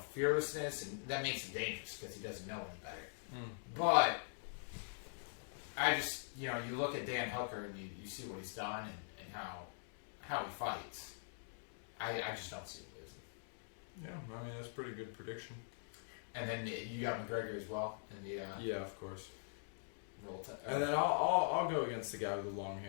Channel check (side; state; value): right; silent; digital silence